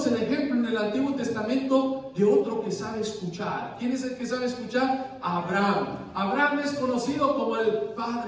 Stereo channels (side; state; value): both; identical; correlation 1.00